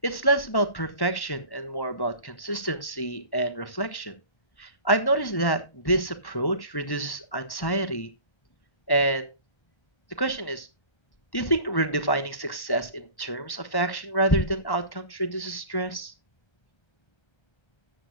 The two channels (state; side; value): late; right; 1.1 ms